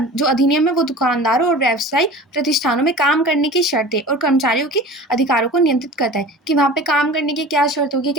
जो अधिनियम है वो दुकानदारों और व्यवसायिक प्रतिष्ठानों में काम करने की शर्तें और कर्मचारियों के अधिकारों को नियंत्रित करता है कि वहाँ पे काम करने की क्या शर्त होगी,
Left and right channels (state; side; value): normal; both; correlation 0.38